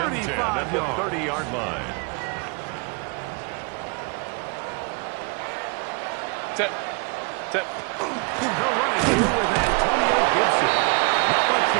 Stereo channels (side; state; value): left; quieter; 31.7 dB